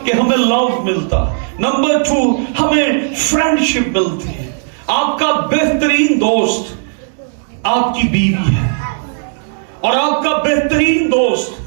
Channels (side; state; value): left; silent; digital silence